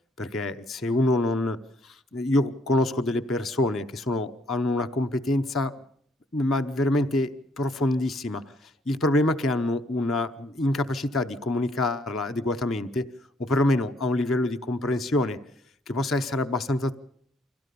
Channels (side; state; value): both; normal; correlation 0.67